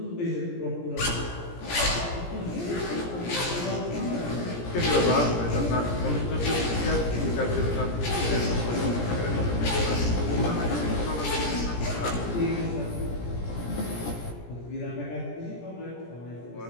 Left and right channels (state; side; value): late; right; 17 ms